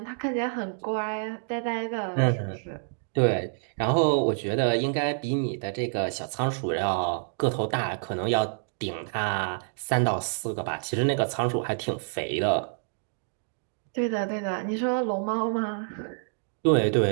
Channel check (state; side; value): silent; left; digital silence